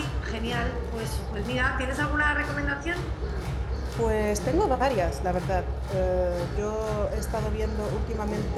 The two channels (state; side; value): identical; both; correlation 1.00